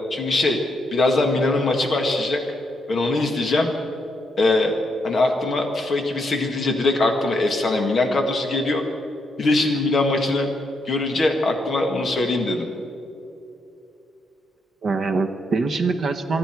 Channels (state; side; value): normal; both; correlation 0.78